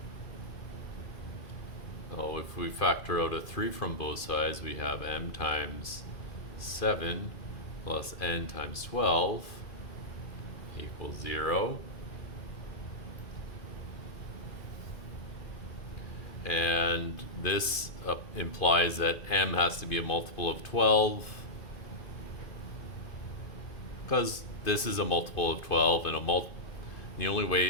Oh, if we factor out a 3 from both sides, we have m times 7 plus n times 12 equals 0. And this implies that m has to be a multiple of 12, because this is a multiple of 12, and the only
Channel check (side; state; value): right; late; 2.5 ms